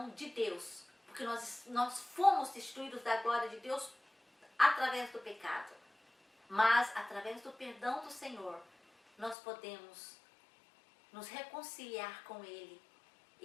de Deus, porque nós fomos destituídos da glória de Deus através do pecado. Mas através do perdão do Senhor, nós podemos nos reconciliar com Ele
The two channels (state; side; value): drops out; right; at 9.3 s